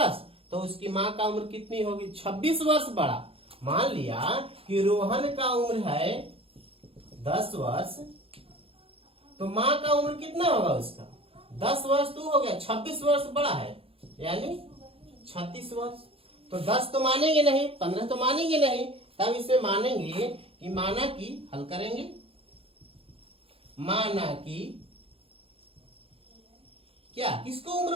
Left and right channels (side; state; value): left; late; 0.27 ms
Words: तो उसकी मां का उम्र कितनी होगी 26 वर्ष बड़ा। मान लिया कि रोहन का उम्र है 10 वर्ष तो मां का उम्र कितना होगा उसका 10 वर्ष तो हो गया 26 वर्ष बड़ा है यानी 36 वर्ष। तो 10 तो मानेंगे नहीं 15 तो मानेंगे नहीं तब इसे मानेंगे कि माना कि हल करेंगे माना कि क्या किसको उम्र